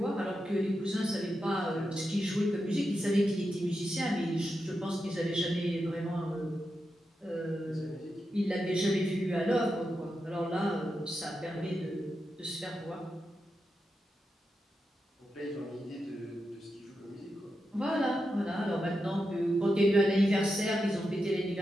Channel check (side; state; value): both; normal; correlation 0.88